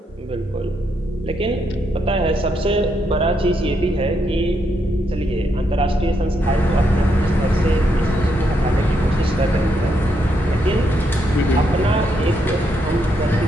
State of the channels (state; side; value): normal; both; correlation 0.78